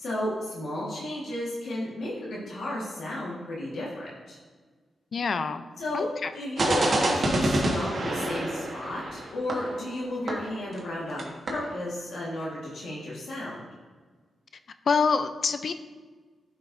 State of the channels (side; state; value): both; normal; correlation 0.85